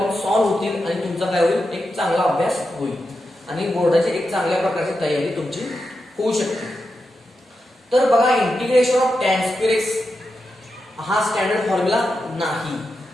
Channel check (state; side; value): normal; both; correlation 0.88